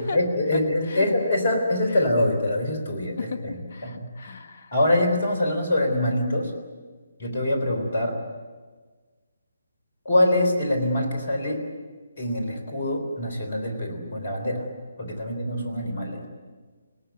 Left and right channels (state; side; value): inverted; both; correlation -0.80